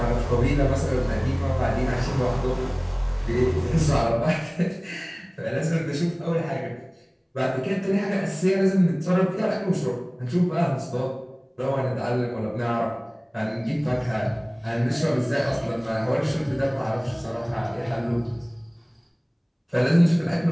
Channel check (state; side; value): identical; both; correlation 1.00